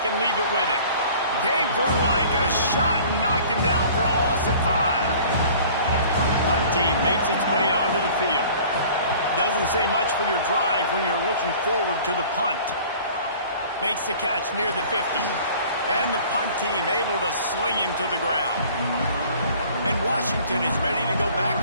and leave it with him. Came through like a shot and knocked him down for a loss of 5. Punt team makes its way onto the field. Doesn't say much for your drive when you're looking forward to the punt. Makes the catch near the 50. And the punt team able to sling him to the ground. And Washington is ready to go back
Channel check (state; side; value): inverted; both; correlation -0.48